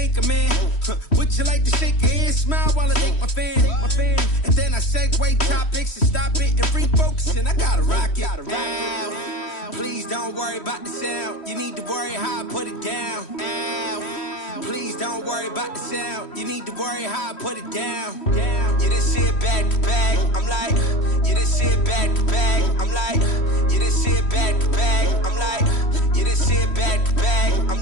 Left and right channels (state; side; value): late; right; 3.1 ms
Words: Would you like to shake your hand, smile while I thank my fan? And then I segue topics and stop it and refocus, and I gotta rock it. Please don't worry about the sound. You need to worry how I put it down. Please don't worry about the sound. You need to worry how I put it down. You didn't see it back to back. I'm like, you didn't see it back to back. I'm like, you didn't see it back to back. I'm like, you didn't see it back to back. I'm